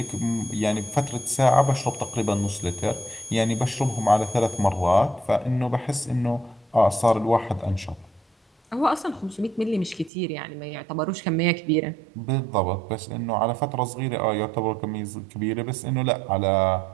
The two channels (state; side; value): drops out; left; at 10.1 s